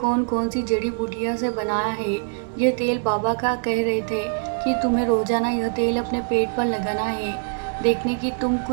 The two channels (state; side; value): silent; left; 63 dB below the other